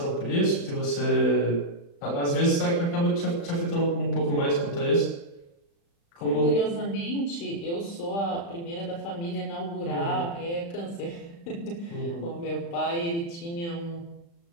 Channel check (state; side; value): late; right; 35 ms